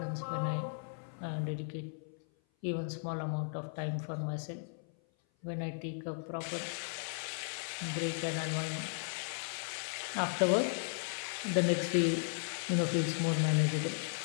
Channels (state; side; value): silent; right; 54 dB below the other